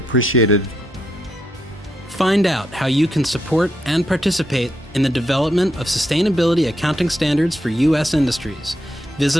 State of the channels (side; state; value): both; normal; correlation 0.80